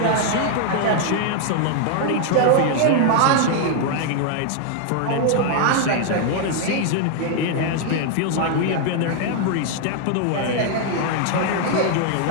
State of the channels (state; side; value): different; both; correlation 0.00